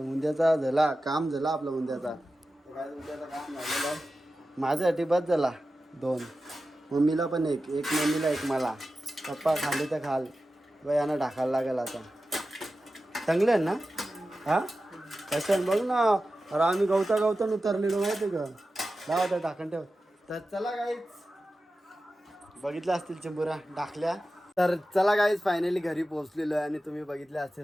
झाला काम झाला आपला उंद्याचा काम झालेला माझ्यासाठी बस झाला 2 मम्मीला पण एक मम्मीला एक मला पप्पा खाल्ले तर खाल बाई यांना ढाकायला लागेल आता चांगले आहे ना हा कशाने बघ ना अरे आम्ही गवतान उतरलेलो माहिती का लावा तर ढाकण ठेव तर चला काहीच बघितल्या असतील चिंबुऱ्या टाकल्या तर चला गाईज फायनली घरी पोहोचलेलो आहे आणि तुम्ही बघितले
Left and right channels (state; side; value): normal; both; correlation 0.93